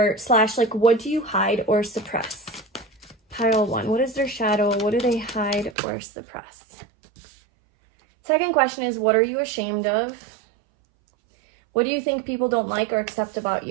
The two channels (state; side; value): drops out; left; at 5.8 s